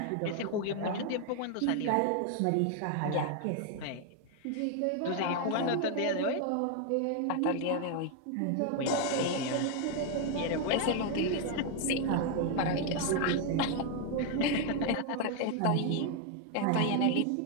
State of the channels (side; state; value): both; different; correlation 0.01